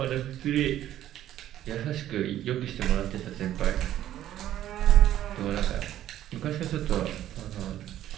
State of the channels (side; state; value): left; quieter; 12.4 dB